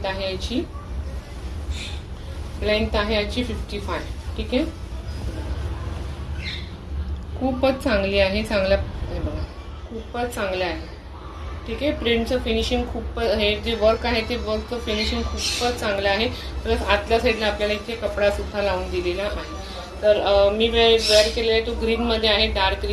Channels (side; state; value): both; identical; correlation 1.00